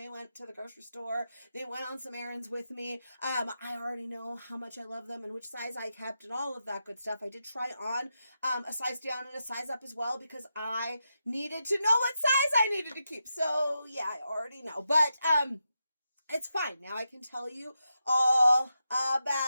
went to the grocery store. They went on some errands with me. I already know how much I love them and which size I kept and all of that good stuff. I did try on a size down and a size up as well because I needed to know what size I needed to keep. So yeah, I already know. But it's fine. Now I can tell you all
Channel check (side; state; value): both; inverted; correlation -0.87